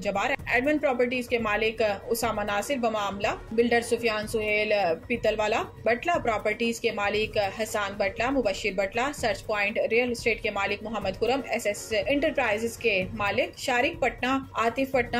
Jabbar, admin properties के मालिक उसामा नासिर बमामला, बिल्डर सुफियान सुहेल पीतलवाला, बटला प्रॉपर्टीज के मालिक Hasan Batla, Mubashir Batla, search point real estate के मालिक मोहम्मद खुरम, SS इंटरप्राइजेस के मालिक शारिक पटना, आतिफ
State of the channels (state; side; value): identical; both; correlation 1.00